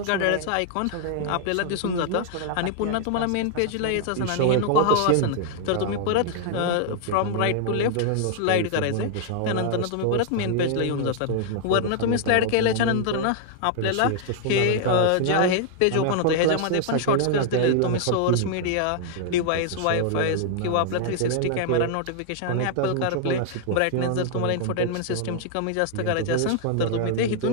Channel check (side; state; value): both; different; correlation 0.00